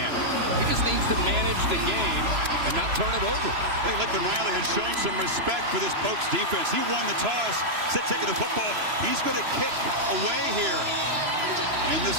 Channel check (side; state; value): left; late; 3.0 ms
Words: He just needs to manage the game and not turn it over. I think Lincoln Riley has shown some respect for this Pokes defense. He won the toss, instead taking the football. He's going to kick away here. And